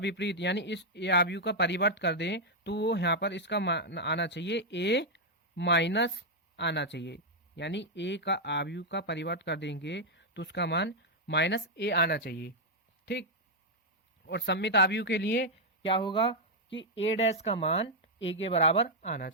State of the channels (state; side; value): normal; both; correlation -0.02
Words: यानी इस ए आव्यूह का परिवर्त कर दें तो वो यहाँ पर इसका मान आना चाहिए ए माइनस आना चाहिए। यानी ए का आव्यूह का परिवर्त कर देंगे तो उसका मान माइनस ए आना चाहिए। ठीक। और सममित आव्यूह के लिए क्या होगा कि ए डैश का मान ए के बराबर आना